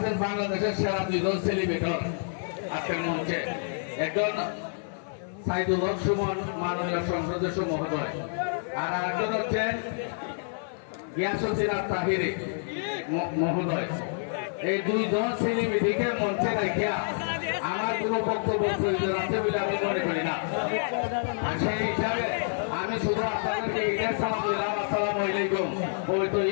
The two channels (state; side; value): silent; right; 59 dB below the other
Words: বাংলাদেশের সেরা দুইজন সেলিব্রেটর আজকের মঞ্চে, একজন সাইদুল হক সুমন মাননীয় সংসদ সদস্য মহোদয়, আর আরেকজন হচ্ছেন গিয়াসুদ্দিন তাহিরি মহোদয়। এই দুইজন সেলিব্রিটিকে মঞ্চে রাখিয়া আমার কোন বক্তব্য প্রয়োজন আছে বলে আমি মনে করি না। সেই হিসাবে আমি শুধু আপনাদেরকে ঈদের সালাম দিলাম, আসসালামু আলাইকুম, পবিত্র